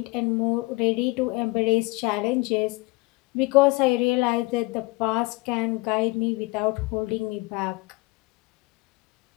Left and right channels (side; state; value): right; quieter; 24.4 dB